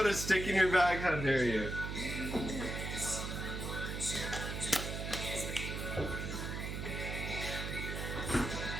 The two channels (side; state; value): right; noise; hum, 4 dB below the sound